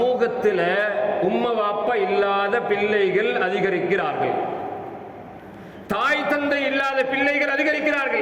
உம்மா வாப்பா இல்லாத பிள்ளைகள் அதிகரிக்கிறார்கள். தாய் தந்தை இல்லாத பிள்ளைகள்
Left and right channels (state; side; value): identical; both; correlation 1.00